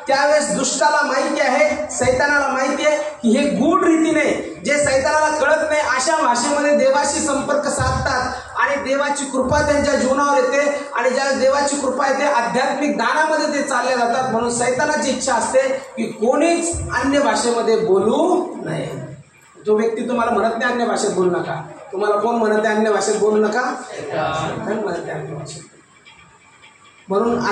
त्यावेळेस दुष्टाला माहिती आहे, सैतानाला माहिती आहे की हे गूढ रीतीने जे सैतानाला कळत नाही अशा भाषेमध्ये देवाशी संपर्क साधतात आणि देवाची कृपा त्यांच्या जीवनावर येते. आणि ज्या देवाची कृपा येते आध्यात्मिक दानामध्ये ते चालले जातात. म्हणून सैतानाची इच्छा असते की कोणीच अन्य भाषेमध्ये बोलू नये. जो व्यक्ती तुम्हाला म्हणत नाही अन्य भाषेत बोलू नका, तुम्हाला कोण म्हणत आहे अन्य भाषेत बोलू नका? म्हणत आहे अन्य भाषेत. म्हणून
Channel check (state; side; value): identical; both; correlation 1.00